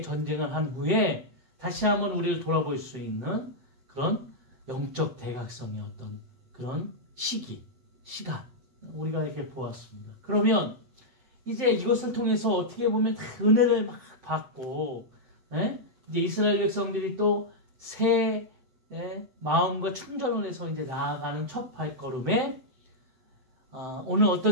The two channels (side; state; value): left; late; 7.8 ms